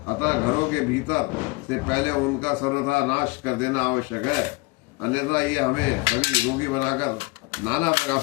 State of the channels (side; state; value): right; quieter; 26.3 dB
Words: अतः घरों के भीतर से पहले उनका सर्वथा नाश कर देना आवश्यक है, अन्यथा ये हमें सभी रोगी बनाकर नाना प्रकार